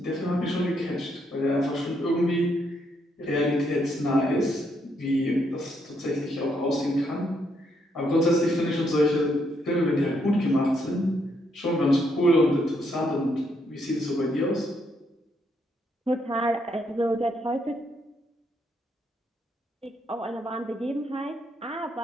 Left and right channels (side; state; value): both; normal; correlation 0.75